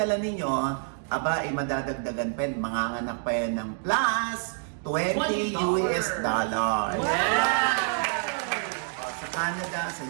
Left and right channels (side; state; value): left; silent; 60 dB below the other